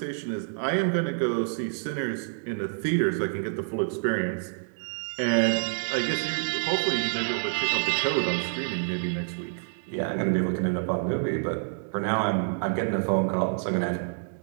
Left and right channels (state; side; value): silent; left; digital silence